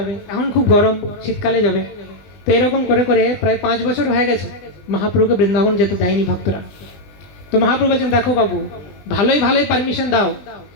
এখন খুব গরম শীতকালে যাবে। তো এরকম করে করে প্রায় 5 বছর হয়ে গেছে মহাপ্রভুকে বৃন্দাবন যেতে দেয়নি ভক্তরা। তো মহাপ্রভু বলছেন দেখো বাবু, ভালোই পারমিশন দাও,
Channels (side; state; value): right; late; 20 ms